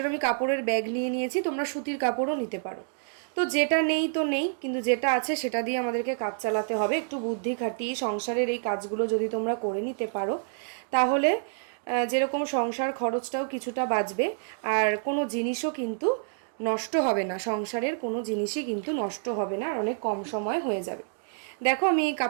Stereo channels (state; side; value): silent; left; digital silence